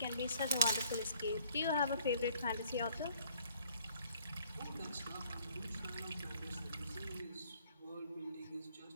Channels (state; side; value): inverted; both; correlation -0.60